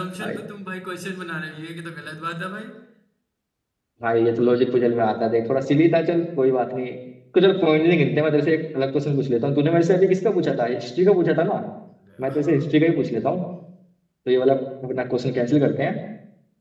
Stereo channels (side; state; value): both; identical; correlation 1.00